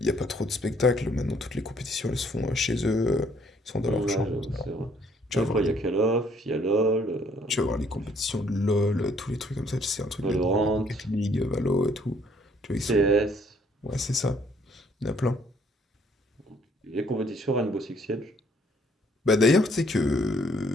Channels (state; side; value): normal; both; correlation 0.64